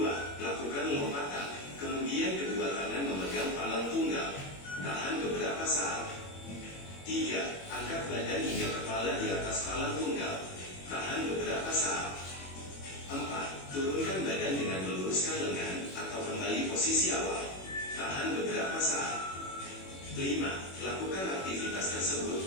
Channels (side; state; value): right; late; 21 ms